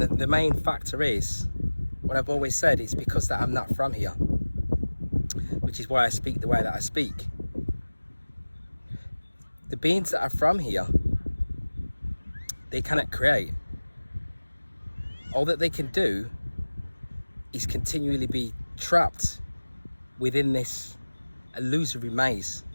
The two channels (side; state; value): both; inverted; correlation -1.00